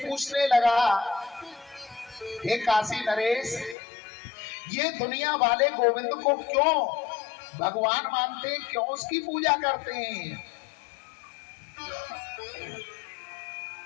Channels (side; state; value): right; drops out; at 3.8 s